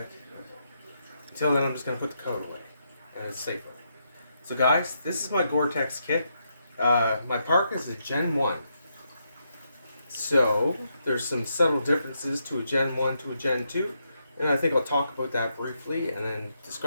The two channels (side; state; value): both; inverted; correlation -0.80